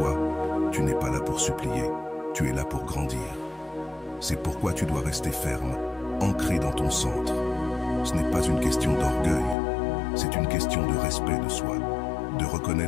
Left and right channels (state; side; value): drops out; right; at 9.6 s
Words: Tu es là pour grandir. C'est pourquoi tu dois rester ferme, ancré dans ton centre. Ce n'est pas une question d'orgueil, c'est une question de respect de soi, de